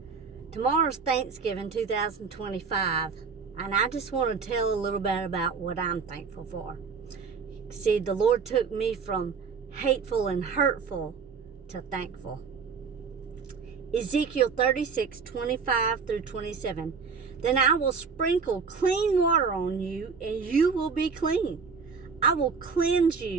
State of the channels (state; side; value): quieter; left; 5.5 dB